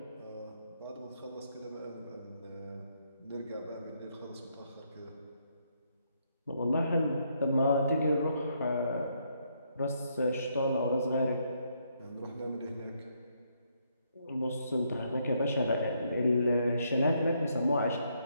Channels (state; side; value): inverted; both; correlation -0.74